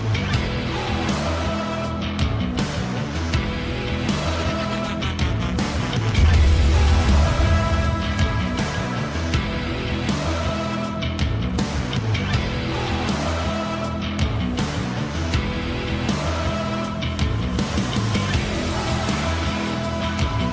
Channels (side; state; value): both; identical; correlation 1.00